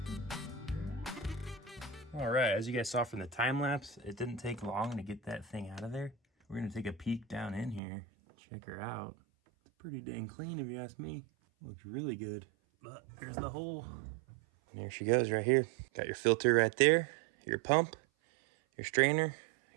All right, as you guys saw from the time lapse, it didn't take long to get that thing out of there. We're gonna take a peek down in here, check her out. It's pretty dang clean if you ask me. Looks really good. But here's the hole. And there she goes right here. Got your filter right there, your pump, your strainer,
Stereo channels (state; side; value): drops out; left; at 7.8 s